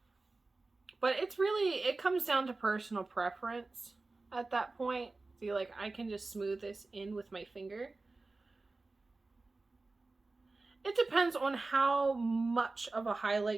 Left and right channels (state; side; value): quieter; left; 3.5 dB